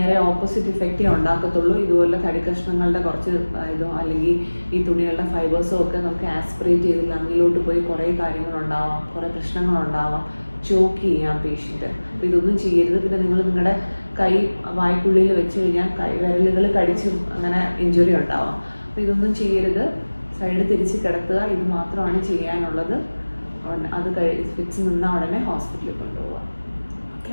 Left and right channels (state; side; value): inverted; both; correlation -1.00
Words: ഓപ്പോസിറ്റ് ഇഫക്റ്റേ ഉണ്ടാക്കത്തുള്ളൂ. ഇതുപോലെ തടി കഷ്ണങ്ങളുടെ കുറച്ച് ഇതോ അല്ലെങ്കിൽ ഈ തുണികളുടെ ഫൈബേഴ്സോ ഒക്കെ നമുക്ക് ആസ്പിറേറ്റ് ചെയ്ത് ലങ്ങിലോട്ട് പോയി കുറേ കാര്യങ്ങളുണ്ടാവാം, കുറേ പ്രശ്നങ്ങളുണ്ടാവാം, ചോക്ക് ചെയ്യാം പേഷ്യൻ്റ്. അപ്പോൾ ഇതൊന്നും ചെയ്യരുത്. പിന്നെ നിങ്ങൾ നിങ്ങളുടെ കൈ വായ്ക്കുള്ളിൽ വെച്ച് കഴിഞ്ഞാൽ വിരലുകൾ കടിച്ചും അങ്ങനെ ഇഞ്ചുറി ഉണ്ടാവാം. അപ്പോൾ ഇതൊന്നും ചെയ്യരുത്. സൈഡ് തിരിച്ച് കിടത്തുക. ഇത് മാത്രമാണ് ചെയ്യാനുള്ളത്. അത് ഫിറ്റ്സ് നിന്നാൽ ഉടനെ ഹോസ്പിറ്റലിൽ കൊണ്ടുപോവുക. Okay